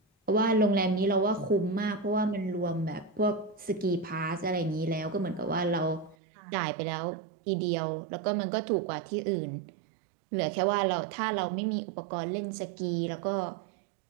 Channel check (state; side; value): drops out; left; at 6.2 s